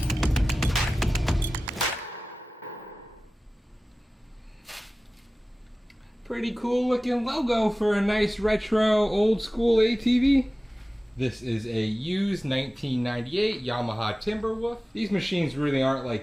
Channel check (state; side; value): normal; both; correlation 0.97